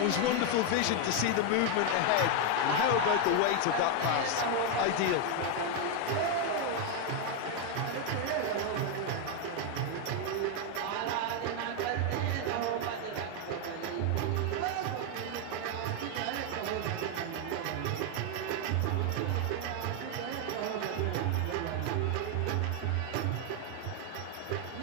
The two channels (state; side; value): different; both; correlation 0.01